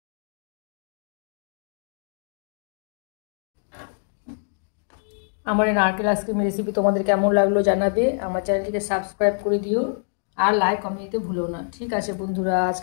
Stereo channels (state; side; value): silent; right; digital silence